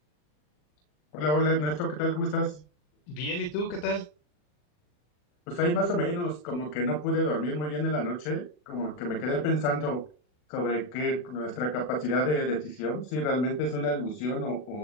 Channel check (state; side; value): late; right; 40 ms